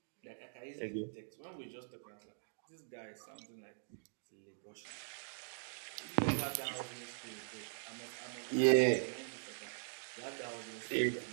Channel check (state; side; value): silent; left; digital silence